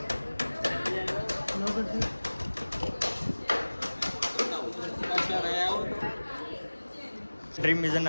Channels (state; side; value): inverted; both; correlation -1.00